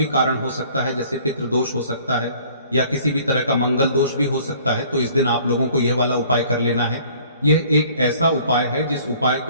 कारण हो सकता है, जैसे पितृदोष हो सकता है या किसी भी तरह का मंगल दोष भी हो सकता है। तो इस दिन आप लोगों को यह वाला उपाय कर लेना है। यह एक ऐसा उपाय है जिस उपाय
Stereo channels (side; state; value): both; inverted; correlation -0.54